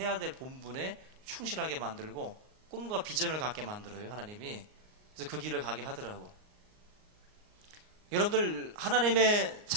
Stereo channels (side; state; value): left; late; 38 ms